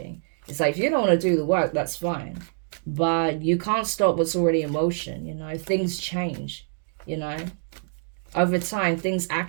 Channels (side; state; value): left; silent; digital silence